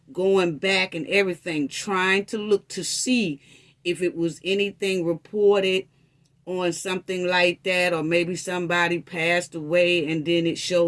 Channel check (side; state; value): both; identical; correlation 1.00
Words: going back and everything, trying to look to see if it was anything reported on something like that, or maybe somebody passed away and then it